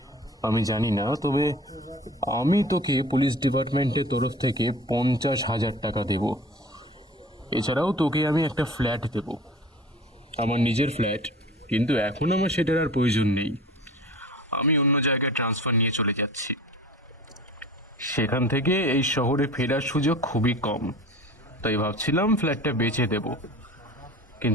আমি জানি না, তবে আমি তোকে পুলিশ ডিপার্টমেন্টের তরফ থেকে 50,000 টাকা দেব। এছাড়াও তোকে আমি একটা ফ্ল্যাট দেব, আমার নিজের ফ্ল্যাট, কিন্তু এখন আমার সেটার আর প্রয়োজন নেই। আমি অন্য জায়গায় ট্রান্সফার নিয়ে চলে যাচ্ছি। সেখান থেকে এই শহরে ফেরার সুযোগ খুবই কম, তাই ভাবছিলাম ফ্ল্যাটটা বেচে দেব,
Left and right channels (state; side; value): normal; both; correlation 0.41